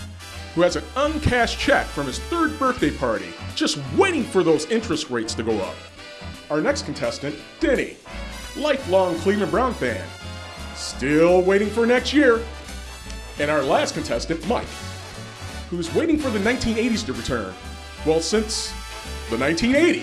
who has an uncashed check from his 3rd birthday party, just waiting for those interest rates to go up. Our next contestant, Denny, lifelong Cleveland Brown fan, still waiting for next year. And our last contestant, Mike, who's waiting for the 1980s to return. Well, since the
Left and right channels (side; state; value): both; identical; correlation 1.00